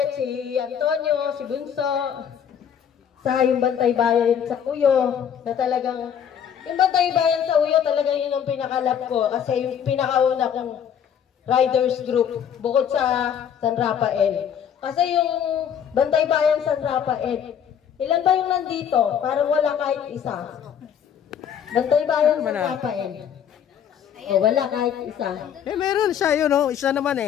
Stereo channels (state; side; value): quieter; right; 8.5 dB